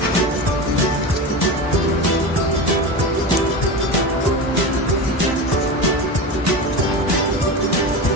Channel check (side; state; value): both; normal; correlation 0.24